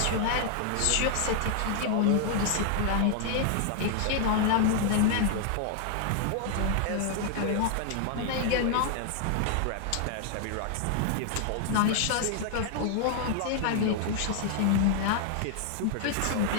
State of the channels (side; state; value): both; different; correlation 0.00